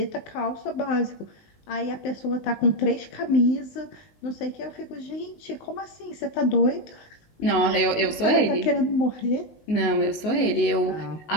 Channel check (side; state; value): right; late; 19 ms